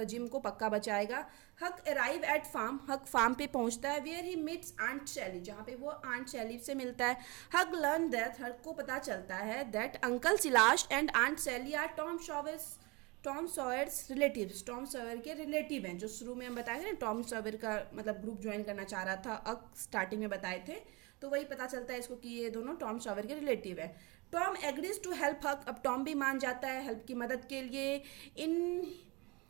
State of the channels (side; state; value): left; quieter; 26.6 dB